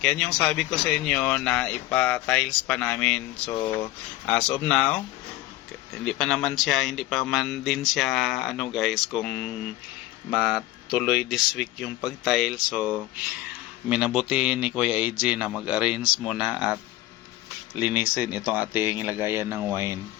Yan yung sabi ko sa inyo na ipa-tiles pa namin. So, as of now, hindi pa man din siya ano guys, kung matuloy this week yung pag-tile. So, minabuti ni Kuya AJ na mag-arrange muna at linisin itong ating lagayan ng wine.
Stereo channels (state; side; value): quieter; right; 16.4 dB